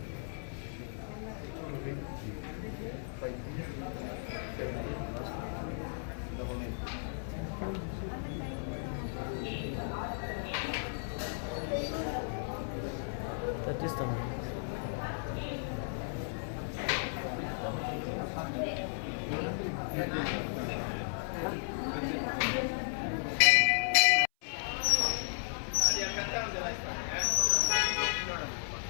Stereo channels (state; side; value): silent; right; 55 dB below the other